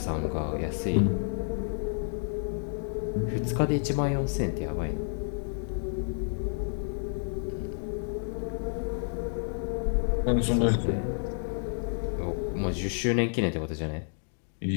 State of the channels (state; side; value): silent; right; digital silence